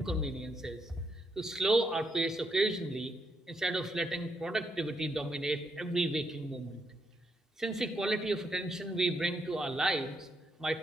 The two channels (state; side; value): normal; both; correlation 0.78